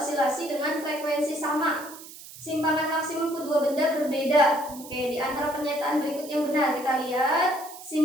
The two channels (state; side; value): noise; right; hiss, 16 dB below the sound